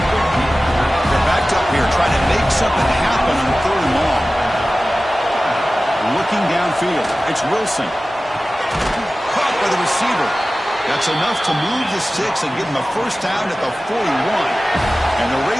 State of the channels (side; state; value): both; normal; correlation 0.96